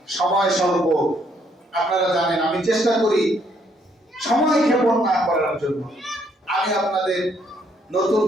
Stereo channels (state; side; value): normal; both; correlation 0.69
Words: সময় স্বল্প, আপনারা জানেন আমি চেষ্টা করি সময় ক্ষেপণ না করার জন্য। আমি আপনাদের নতুন